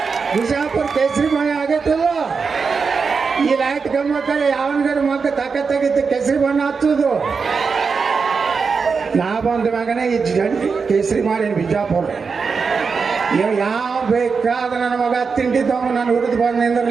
ಬಿಜಾಪುರ ಕೇಸರಿಮಯ ಆಗೈತಲ್ಲ. ಈ ಲೈಟ್ ಗಮ್ಮಕ್ಕಲ್ಲಿ ಯಾವನ್ಗಾರ ಮಗ ತಾಕತ್ತಾಗಿತ್ತು ಕೇಸರಿ ಬಣ್ಣ ಹಚ್ಚೋದು. ನಾ ಬಂದ ಮಗನೇ ಈ ಕೇಸರಿ ಮಾಡಿ ಬಿಜಾಪುರ ಯಾವ ಬೇಕಾದ ನನ್ನ ಮಗ ತಿಂಡಿದ್ದವ ನಾನು ಹುರಿದು ಬಂದು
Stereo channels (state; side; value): quieter; left; 5.2 dB